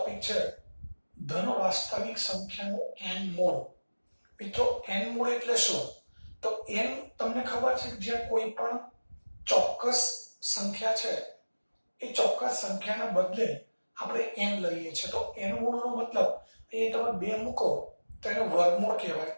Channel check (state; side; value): inverted; both; correlation -1.00